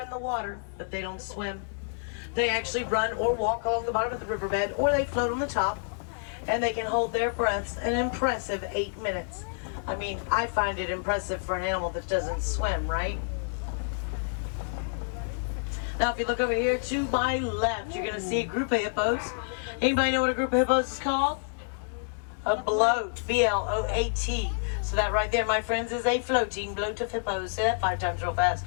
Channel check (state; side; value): silent; right; digital silence